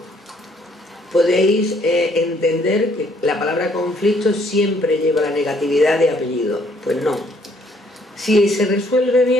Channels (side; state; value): both; normal; correlation 0.65